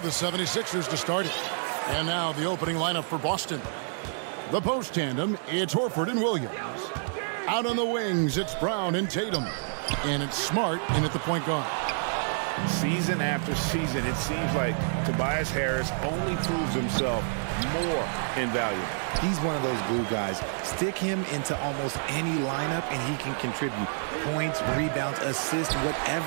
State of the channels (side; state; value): left; silent; digital silence